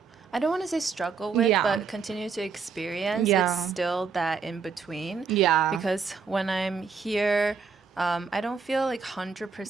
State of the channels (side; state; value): left; quieter; 5.4 dB